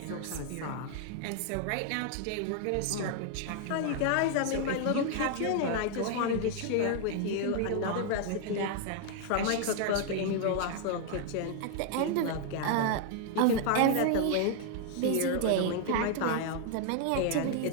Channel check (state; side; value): different; both; correlation 0.00